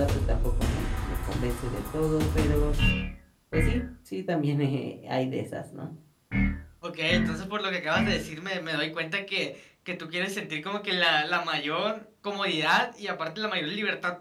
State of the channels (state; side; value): identical; both; correlation 1.00